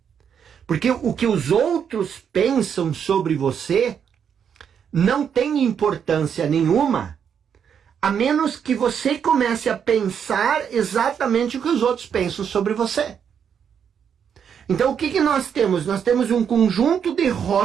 Porque o que os outros pensam sobre você não tem importância nenhuma, a menos que você comece a pensar exatamente o que os outros pensam sobre você. Então o que nós temos? Nós temos um conjunto de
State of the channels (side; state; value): left; quieter; 7.7 dB